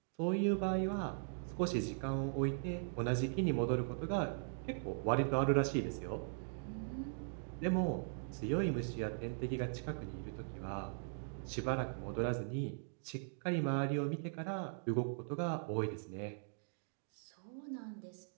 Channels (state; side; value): silent; left; digital silence